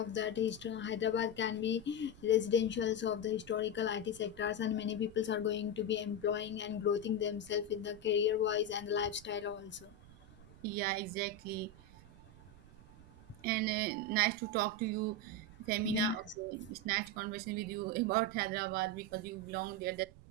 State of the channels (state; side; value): noise; right; rumble, 21 dB below the sound